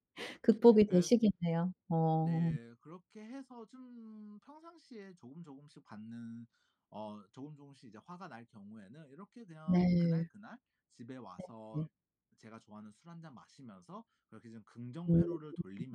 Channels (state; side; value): identical; both; correlation 1.00